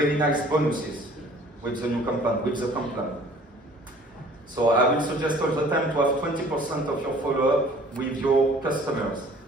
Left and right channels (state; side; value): normal; both; correlation 0.52